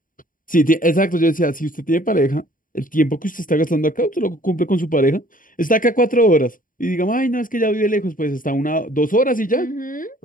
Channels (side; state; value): right; late; 0.39 ms